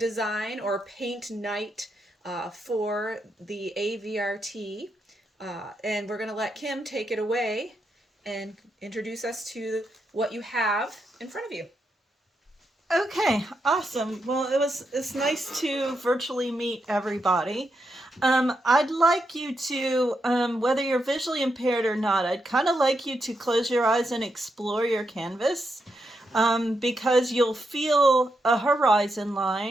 or paint night for the AVRT. And we're going to let Kim take it away and introduce us to what you have in front of you. Okay, awesome. Well, it's nice to virtually meet everybody. I'd like you to, whether you're visually impaired or not, I'd kind of like you to close your eyes and explore your canvas, because you'll feel a horizon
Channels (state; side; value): normal; both; correlation 0.83